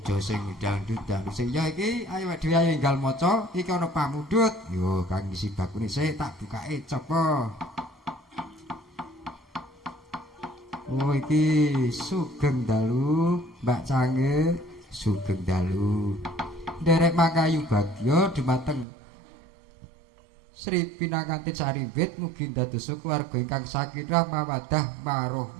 sing dangdut sing ya iki ayo dhewe ayo enggal maca iki ana pamundhut yo kang isi bakune sik tak bukake coba oh iki sugeng dalu Mbak Cange sugeng dalu nderek mangkayu bagya dumateng Sri Pinangganti Sarimbit mugi dados keluarga ingkang sakinah mawaddah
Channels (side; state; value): left; drops out; at 18.9 s